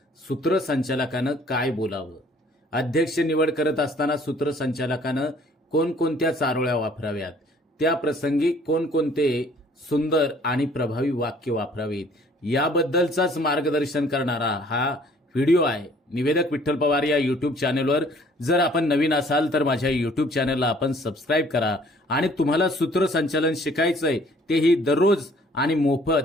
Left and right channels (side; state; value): both; normal; correlation 0.57